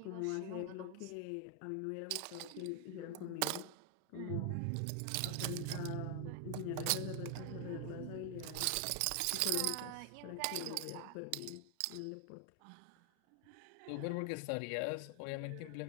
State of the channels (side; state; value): both; different; correlation 0.00